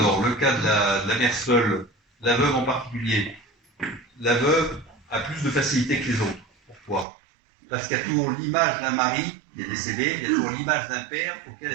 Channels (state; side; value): drops out; left; at 7.1 s